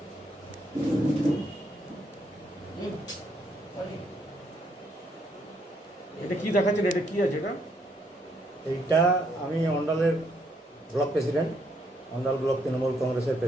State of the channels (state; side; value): normal; both; correlation 0.73